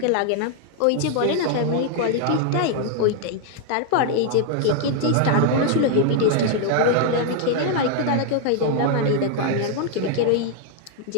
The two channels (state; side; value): different; both; correlation 0.00